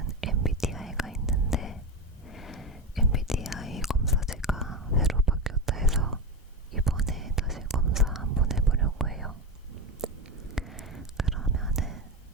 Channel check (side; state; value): both; normal; correlation 0.19